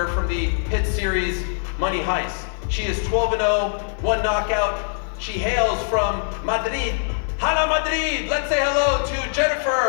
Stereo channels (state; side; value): silent; right; digital silence